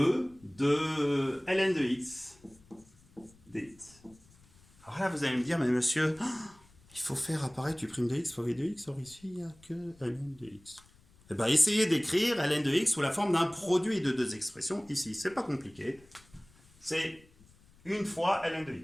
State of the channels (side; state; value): left; noise; rumble, 28 dB below the sound